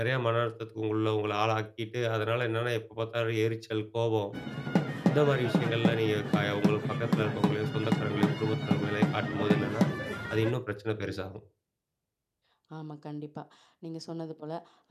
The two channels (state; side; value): identical; both; correlation 1.00